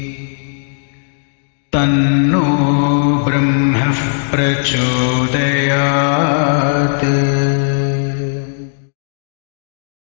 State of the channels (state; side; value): silent; right; digital silence